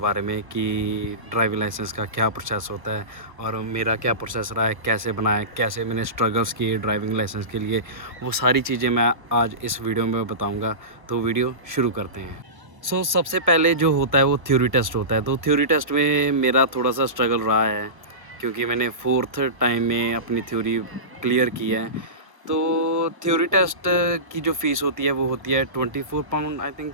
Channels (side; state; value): left; late; 1.0 ms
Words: में, कि ड्राइविंग लाइसेंस का क्या प्रोसेस होता है और मेरा क्या प्रोसेस रहा है, कैसे बनाया, कैसे मैंने स्ट्रगल्स किए ड्राइविंग लाइसेंस के लिए, वो सारी चीज़ें मैं आज इस वीडियो में बताऊँगा। तो वीडियो शुरू करते हैं। सबसे पहले जो होता है वो थ्योरी टेस्ट होता है। तो थ्योरी टेस्ट में मेरा थोड़ा सा स्ट्रगल रहा है, क्योंकि मैंने 4th टाइम में अपनी थ्योरी क्लियर की है। तो थ्योरी टेस्ट की जो फ़ीस होती है वो होती है 24 पाउंड, आई थिंक